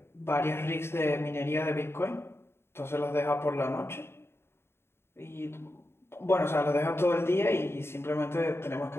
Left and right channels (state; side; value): late; right; 0.12 ms